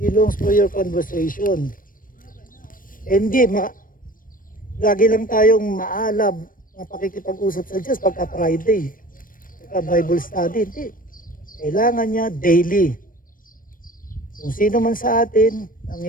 longs for your conversation. Hindi, lagi lang tayong maalab na pakikipag-usap sa Diyos pagka Friday, pagka Bible study. Hindi. Kailangan niya daily. Kung sino man sa atin ang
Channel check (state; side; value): late; right; 0.40 ms